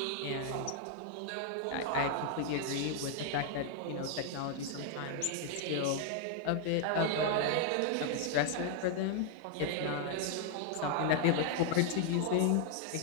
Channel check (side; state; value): both; different; correlation 0.00